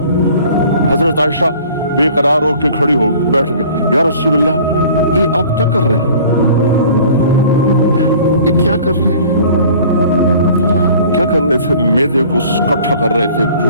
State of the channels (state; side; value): inverted; both; correlation -0.48